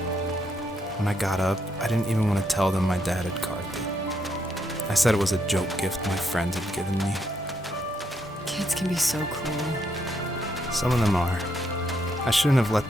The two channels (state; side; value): normal; both; correlation 0.76